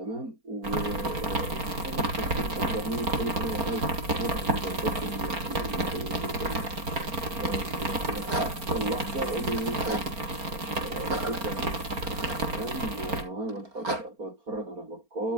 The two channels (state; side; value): late; left; 4.4 ms